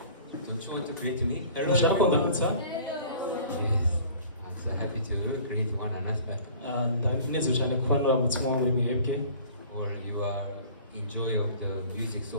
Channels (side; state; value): both; inverted; correlation -0.47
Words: Don't you want to greet me? Ushaka kundamutsa? Yes. I'm so happy to greet one another. Ndanezerewe cyane kuba nuramutse muri mwebwe. Or you are enjoy of the music so